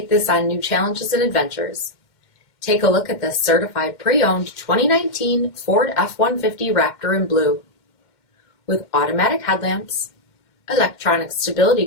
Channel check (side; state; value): right; late; 2.2 ms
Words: this on new challenges and adventures. Take a look at this certified pre-owned 2019 Ford F-150 Raptor in blue. With automatic headlamps, electronic stability